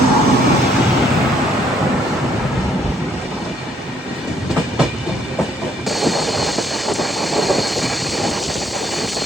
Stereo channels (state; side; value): normal; both; correlation 0.68